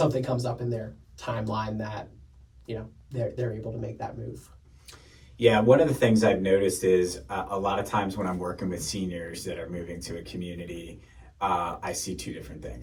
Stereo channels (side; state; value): both; identical; correlation 1.00